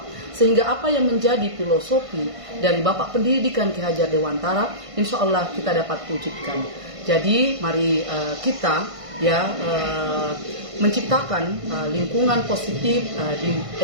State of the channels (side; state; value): left; late; 1.5 ms